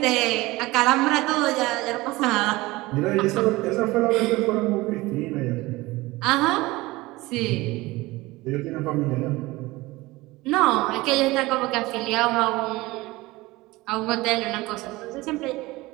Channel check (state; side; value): quieter; left; 20.5 dB